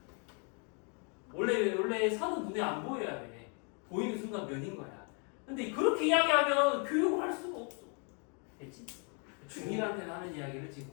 원래 선은 눈에 안 보여야 돼. 보이는 순간 면인 거야. 근데 그렇게 이야기하면 교육을 할 수가 없어. 됐지? 중1한테는 하는 이야기를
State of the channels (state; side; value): quieter; right; 37.6 dB